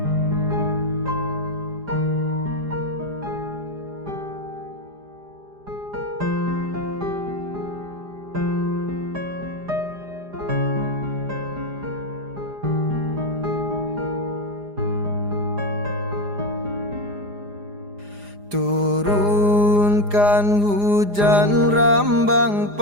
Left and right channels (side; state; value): left; late; 4.9 ms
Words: Turunkan hujan rambang